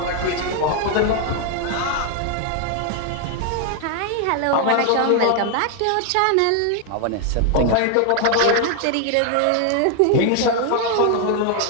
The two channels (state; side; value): different; both; correlation 0.00